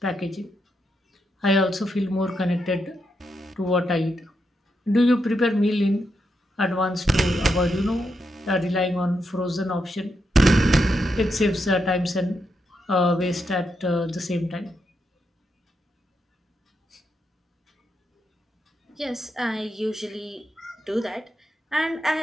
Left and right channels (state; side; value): normal; both; correlation 0.83